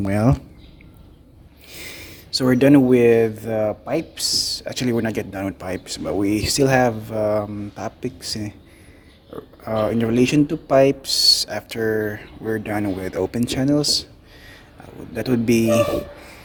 well. So we're done with pipes. Actually, we're not yet done with pipes, but we still have topics in relation to pipes after we're done with open channels. That would be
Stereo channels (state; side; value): identical; both; correlation 1.00